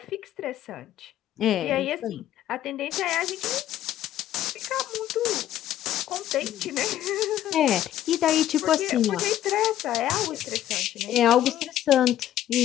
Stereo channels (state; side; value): quieter; right; 12.4 dB